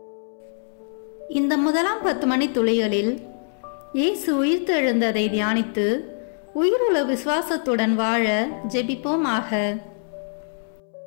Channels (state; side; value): silent; right; 63 dB below the other